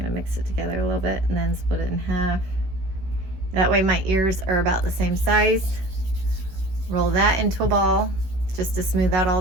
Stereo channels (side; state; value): left; late; 16 ms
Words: mix it together a little bit and then split it in half. That way my ears are about the same size. Roll that into a ball just to smooth out all